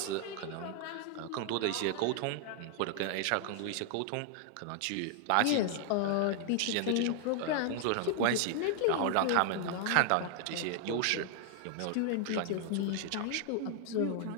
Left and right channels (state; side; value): different; both; correlation 0.00